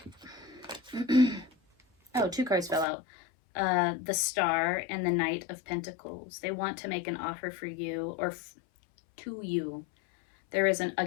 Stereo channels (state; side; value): drops out; right; at 2.9 s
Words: Oh, 2 cards fell out. The Star and the Knight of Pentacles. They want to make an offer for you or to you. There is,